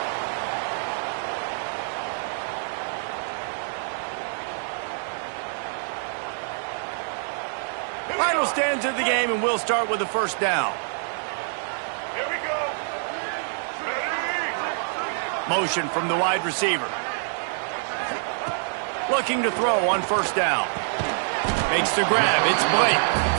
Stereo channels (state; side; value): silent; left; digital silence